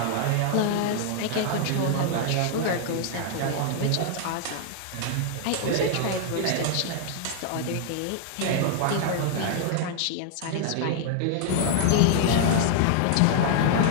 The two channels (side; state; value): both; different; correlation -0.01